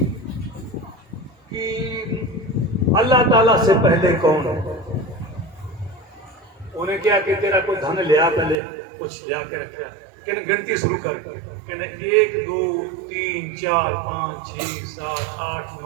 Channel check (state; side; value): drops out; left; at 8.6 s